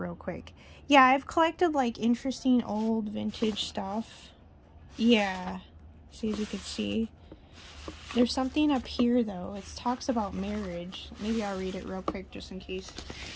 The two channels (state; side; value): identical; both; correlation 1.00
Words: quick. Yeah, I've collected like interesting old vintage stuff. Yeah, see, as you can see. There's something up here though. It talks about marriage. Maybe I'll read it real quick just in case.